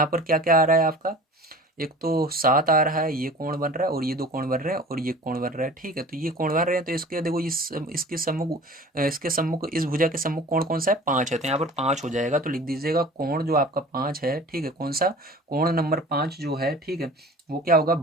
पर क्या क्या आ रहा है आपका, एक तो 7 आ रहा है, ये कोण बन रहा है, और ये 2 कोण बन रहे हैं, और ये कोण बन रहा है, ठीक है। तो ये कोण बन रहे हैं, तो इसके देखो इसके सम्मुख इस भुजा के सम्मुख कोण कौन सा है, 5 है, तो यहाँ पर 5 हो जाएगा। तो लिख दीजिएगा कोण जो आपका 5 है, ठीक है, कौन सा कोण नंबर 5 जो है, ठीक है, वो क्या होगा,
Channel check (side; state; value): both; normal; correlation 0.42